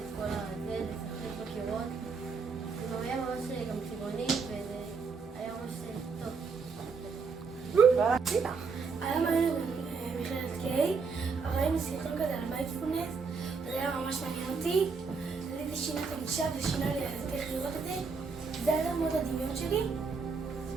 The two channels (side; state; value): left; quieter; 5.0 dB